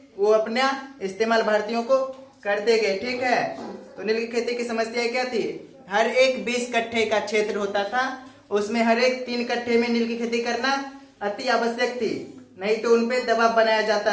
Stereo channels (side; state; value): both; identical; correlation 1.00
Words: वो अपना इस्तेमाल भारतीयों को करते गए। ठीक है, तो नील की खेती की समस्या क्या थी? हर एक 20 कट्ठे का क्षेत्र होता था, उसमें हर एक 3 कट्ठे में नील की खेती करना अति आवश्यक थी, नहीं तो उनपे दबाव बनाया